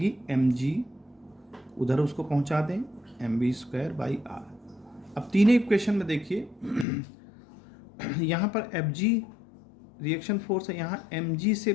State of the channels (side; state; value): right; drops out; at 6.9 s